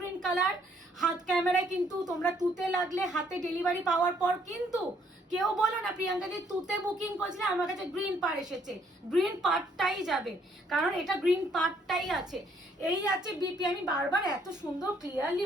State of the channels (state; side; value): normal; both; correlation 0.66